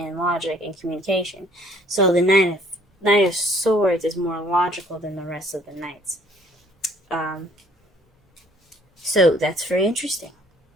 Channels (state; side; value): normal; both; correlation 0.59